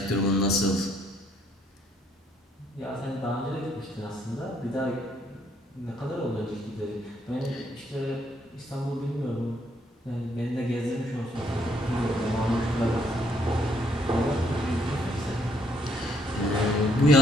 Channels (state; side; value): normal; both; correlation 0.70